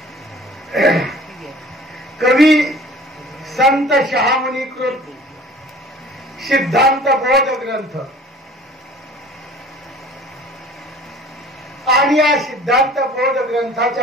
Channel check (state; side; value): normal; both; correlation 0.47